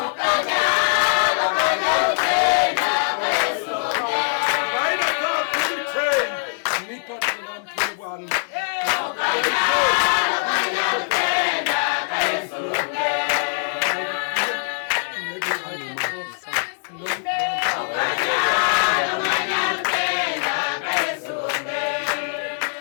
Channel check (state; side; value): silent; right; digital silence